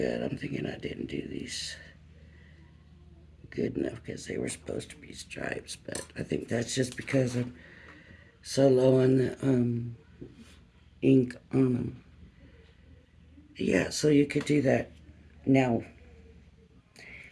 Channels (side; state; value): both; identical; correlation 1.00